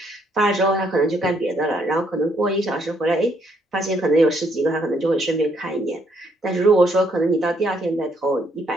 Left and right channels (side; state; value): both; normal; correlation 0.70